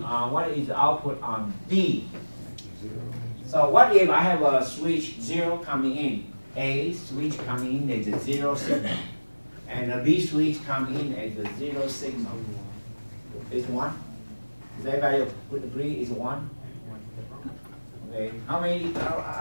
D? So what if I have a switch 0 coming in? A switch coming in as a 0 signal. And a B switch coming in as a 0 signal. It's 1? Does everybody agree it's 1? Okay. How many?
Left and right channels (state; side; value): inverted; both; correlation -1.00